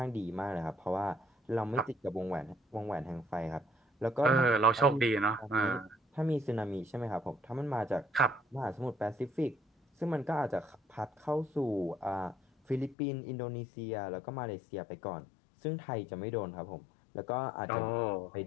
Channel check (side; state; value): right; drops out; at 13.0 s